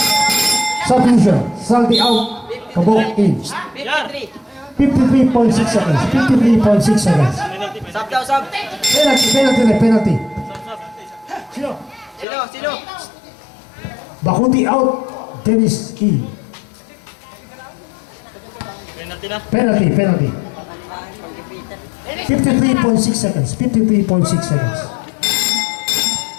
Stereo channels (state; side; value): drops out; right; at 12.2 s